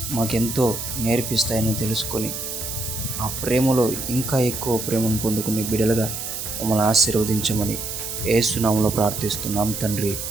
మాకెంతో నేర్పిస్తాయని తెలుసుకొని ఆ ప్రేమలో ఇంకా ఎక్కువ ప్రేమను పొందుకునే బిడ్డలుగా మమ్మల్ని ఆశీర్వదించమని యేసు నామములో ప్రార్థిస్తున్నాం తండ్రి.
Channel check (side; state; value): right; noise; hiss, 6 dB below the sound